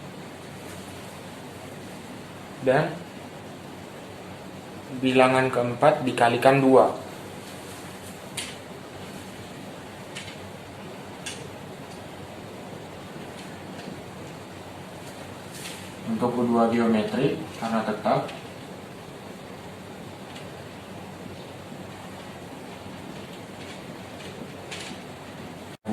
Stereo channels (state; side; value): identical; both; correlation 1.00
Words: dan bilangan keempat dikalikan 2. Untuk U2 geometri karena tetap